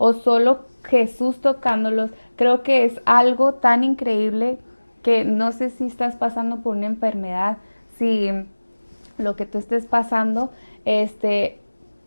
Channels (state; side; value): inverted; both; correlation -1.00